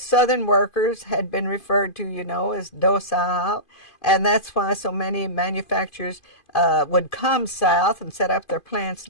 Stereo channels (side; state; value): right; late; 2.5 ms